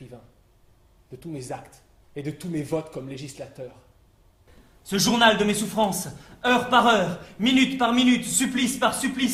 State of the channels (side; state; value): both; identical; correlation 1.00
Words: de tous mes actes et de tous mes votes comme législateur. Ce journal de mes souffrances, heure par heure, minute par minute, supplice par